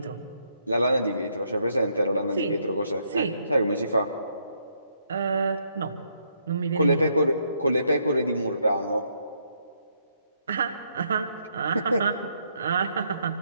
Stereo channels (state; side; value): inverted; both; correlation -0.74